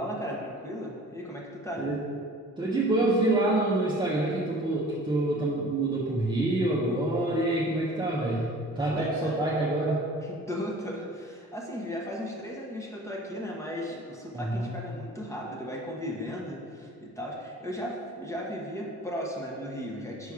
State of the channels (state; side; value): normal; both; correlation 0.46